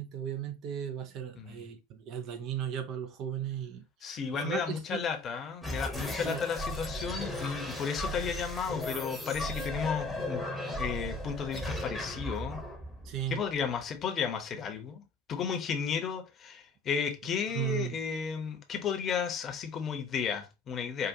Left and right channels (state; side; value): quieter; right; 3.1 dB